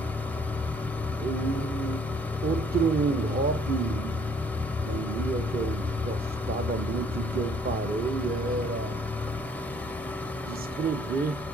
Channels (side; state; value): both; normal; correlation 0.61